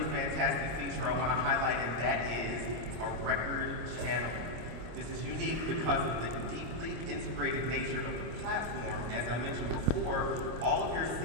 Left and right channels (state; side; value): late; left; 26 ms